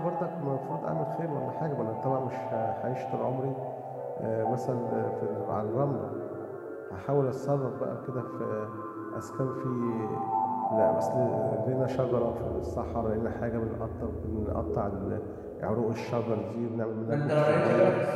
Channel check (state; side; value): identical; both; correlation 1.00